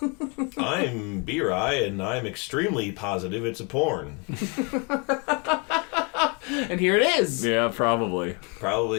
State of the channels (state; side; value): quieter; right; 31.1 dB